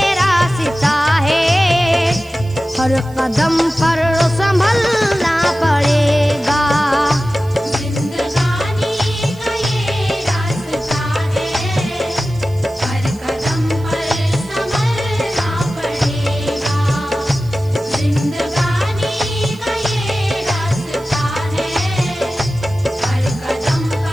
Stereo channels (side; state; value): right; noise; hiss, 25 dB below the sound